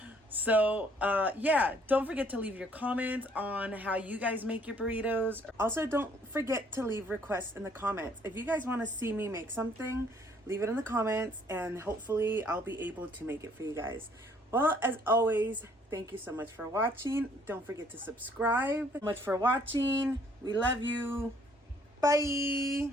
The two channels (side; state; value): both; normal; correlation 0.62